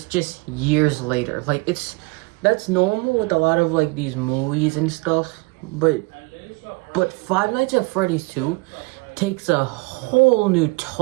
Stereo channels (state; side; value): quieter; left; 26.4 dB